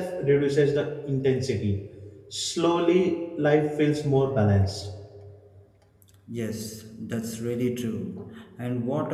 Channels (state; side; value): identical; both; correlation 1.00